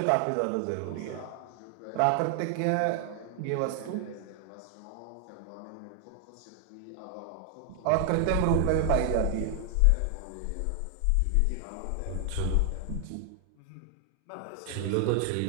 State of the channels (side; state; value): both; different; correlation 0.00